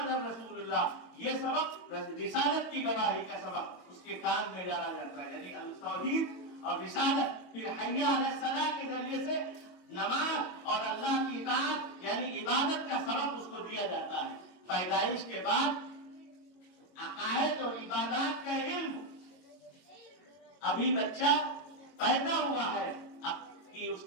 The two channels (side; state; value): right; late; 22 ms